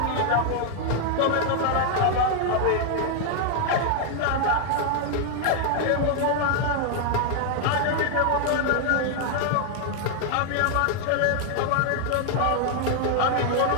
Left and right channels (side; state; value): both; different; correlation 0.00